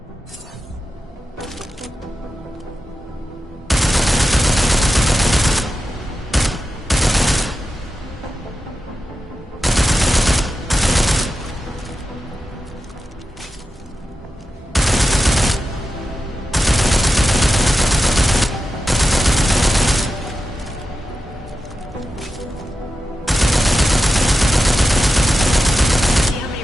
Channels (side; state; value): both; normal; correlation 0.91